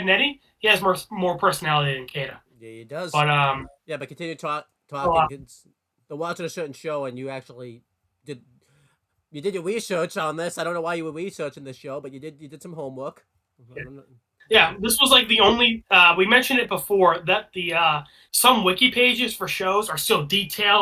Eddie, he has more personality than Kata. Yeah, he does. But Yeah, but continue talking. well, They're watching a certain show, and you actually did you did your research on this. I don't know why you were researching this show, but you did some homework. yeah, this was like the only. We mentioned it before that the some wiki pages for shows are so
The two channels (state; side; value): identical; both; correlation 1.00